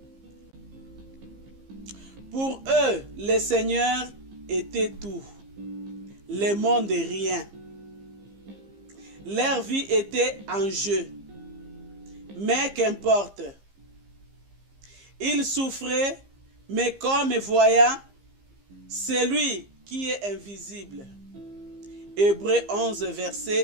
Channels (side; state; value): left; late; 15 ms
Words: Pour eux, le Seigneur était tout, le monde est rien. Leur vie était en jeu. Mais qu'importe. Ils souffraient, mais comme voyant celui qui est invisible. Hébreux 11,